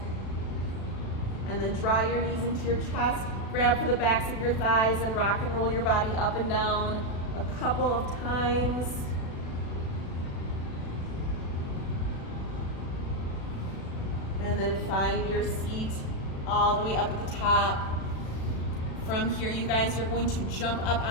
And then draw your knees into your chest, grab for the backs of your thighs and rock and roll your body up and down a couple of times. And then find your seat all the way up at the top. From here, you guys, you're going to jump up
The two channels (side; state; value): right; late; 36 ms